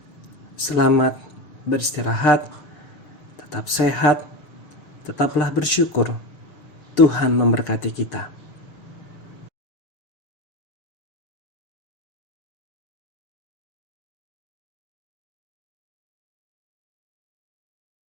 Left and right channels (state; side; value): late; right; 6.7 ms